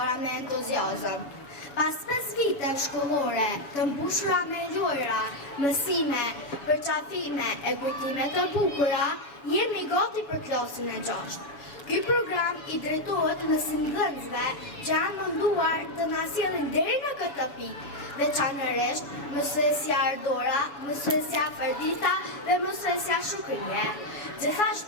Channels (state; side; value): late; right; 7.1 ms